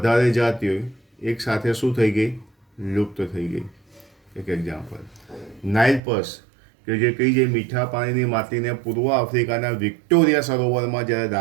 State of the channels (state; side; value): drops out; left; at 6.0 s